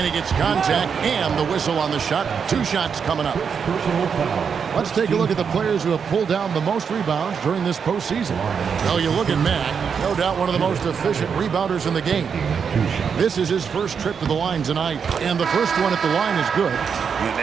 he gets contact and the whistle on the shot. 2 shots coming up. Let's take a look at the players who have pulled down the most rebounds during this postseason. Well, you look at Mack, no doubt one of the most efficient rebounders in the game. This is his first trip to the line tonight, and the first one at the line is good. And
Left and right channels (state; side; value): quieter; left; 6.6 dB